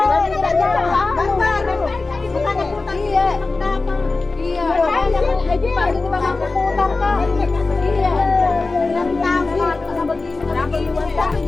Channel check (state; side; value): quieter; right; 3.6 dB